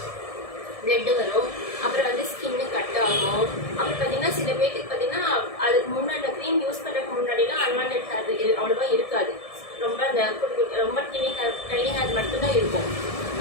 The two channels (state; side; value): late; right; 1.7 ms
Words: அப்புறம் வந்து ஸ்கின்னு கட் ஆகும். அப்புறம் பார்த்தீங்கன்னா சில பேருக்கு பார்த்தீங்கன்னா அதுக்கு முன்னாடி அந்த க்ரீம் யூஸ் பண்ணுறதுக்கு முன்னாடிலாம் அன்வான்டட் ஹேர் அவ்வளோவா இருக்காது. ரொம்ப அந்த ரொம்ப டைனி ஹேர் மட்டும்தான் இருக்கும்.